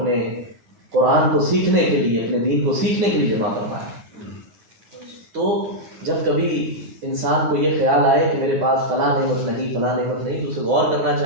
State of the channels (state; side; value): late; left; 9.4 ms